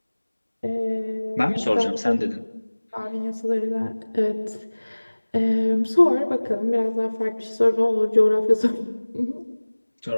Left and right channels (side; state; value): both; inverted; correlation -1.00